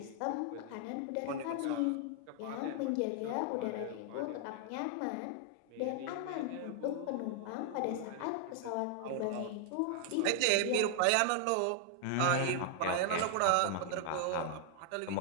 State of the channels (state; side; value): different; both; correlation 0.00